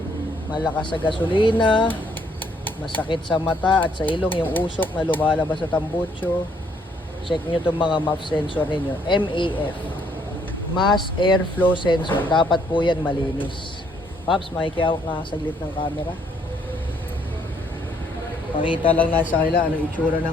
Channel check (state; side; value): normal; both; correlation 0.67